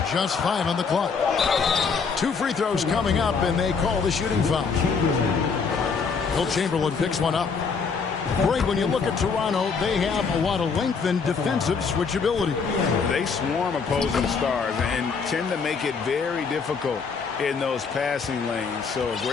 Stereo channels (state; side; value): quieter; right; 5.4 dB